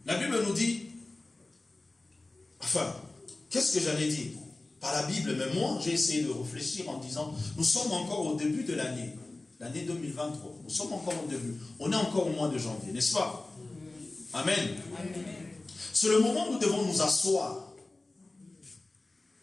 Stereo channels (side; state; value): right; quieter; 3.0 dB